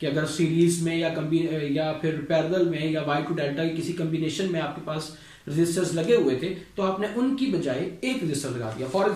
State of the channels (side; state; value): both; identical; correlation 1.00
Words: कि अगर सीरीज में या फिर पैरेलल में या वाई टू डेल्टा की किसी कॉम्बिनेशन में आपके पास रेजिस्टर्स लगे हुए थे तो आपने उनकी बजाय एक रेजिस्टर लगा दिया. फॉर